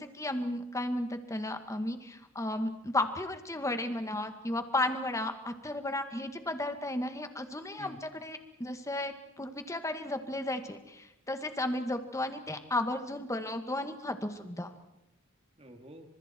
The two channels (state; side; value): normal; both; correlation 0.59